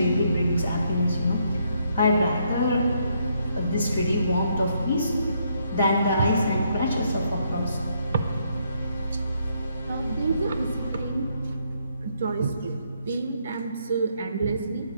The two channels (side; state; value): both; inverted; correlation -0.73